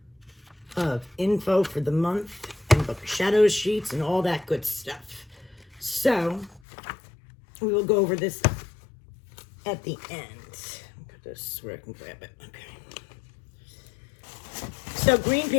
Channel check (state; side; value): drops out; right; at 6.6 s